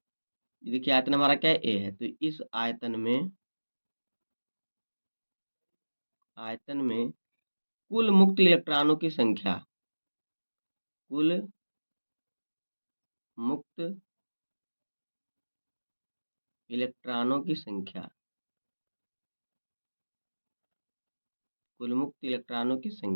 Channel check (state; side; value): inverted; both; correlation -1.00